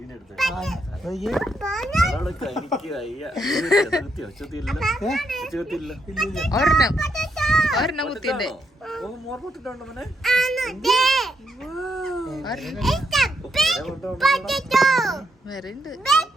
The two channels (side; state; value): both; normal; correlation 0.78